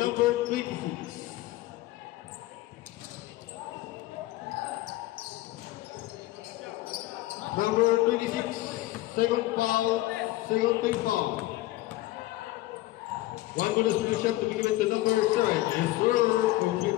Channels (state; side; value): quieter; right; 17.4 dB